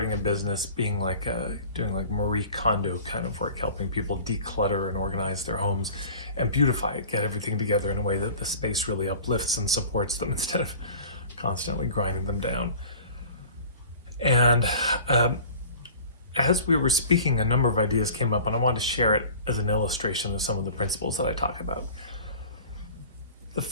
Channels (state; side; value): inverted; both; correlation -0.43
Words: a business being like doing like Marie Kondo kind of work, helping people declutter and organize their homes and beautify it, get everything together in a way that the space really uplifts and supports them instead of constantly grinding them down. And as we were speaking, a number of ideas came up, and I wanted to share it as an illustration of some of the principles that I talk about. The